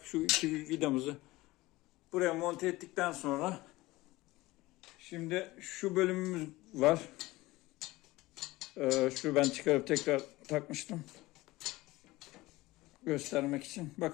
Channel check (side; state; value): right; quieter; 19.5 dB